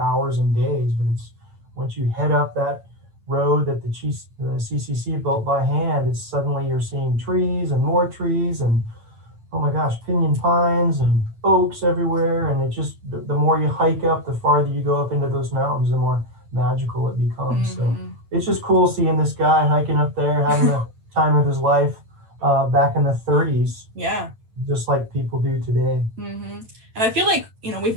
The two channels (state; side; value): late; left; 9.0 ms